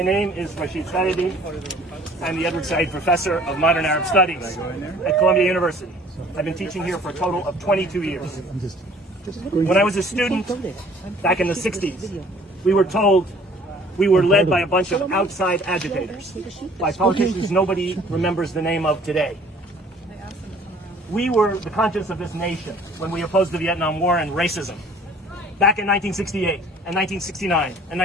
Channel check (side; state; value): both; normal; correlation 0.54